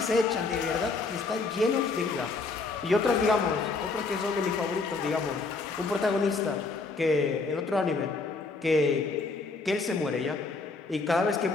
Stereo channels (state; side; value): quieter; right; 4.0 dB